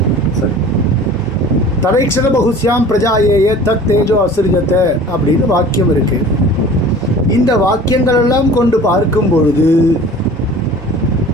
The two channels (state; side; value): normal; both; correlation 0.43